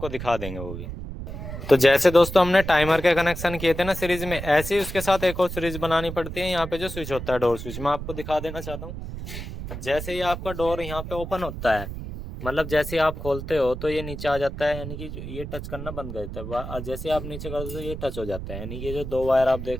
दिखा देंगे वो भी। तो जैसे दोस्तों हमने टाइमर के कनेक्शन किए थे ना सीरीज में, ऐसे ही उसके साथ एक और सीरीज बनानी पड़ती है। यहाँ पे जो स्विच होता है डोर स्विच, मैं आपको दिखा देना चाहता हूँ। जैसे ही आपका डोर यहाँ पे ओपन होता है, मतलब जैसे आप खोलते हो तो ये नीचे आ जाता है, यानी कि ये टच करना बंद कर देता है। और जैसे आप नीचे करते हो तो ये टच हो जाता है। यानी कि जो दो वायर आप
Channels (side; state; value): right; noise; rumble, 8 dB below the sound